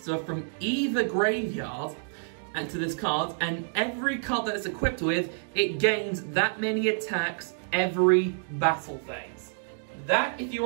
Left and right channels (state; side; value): silent; left; digital silence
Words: from either graveyard and to this card, and every card that it's equipped with, it gains that many attacks every battle phase. That, if you